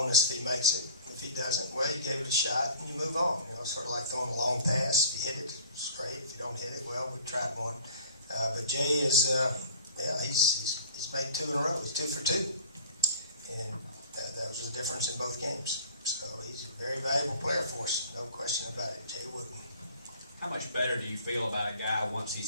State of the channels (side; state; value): both; inverted; correlation -0.45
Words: if he makes it. If he doesn't, well, you gave it a shot and you move on. Sort of like throwing a long pass. If you hit it, it's great. If you don't hit it, well, we tried one. But Jay is, he's made 2 in a row. He's 2 for 2, and that was the difference in both games. So he's a very valuable player for us, no question about it. Jay Wooden. How much better do you feel about a guy once